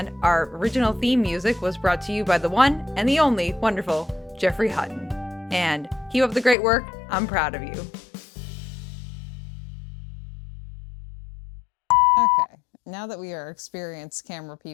our original theme music was brought to you by the one and the only wonderful Jeffrey Hutton. And keep up the great work. I'm proud of you. Okay, now that we are experienced camera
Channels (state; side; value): drops out; right; at 6.6 s